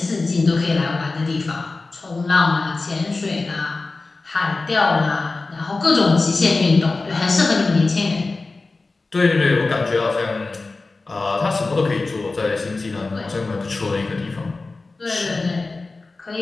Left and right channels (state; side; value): quieter; right; 3.6 dB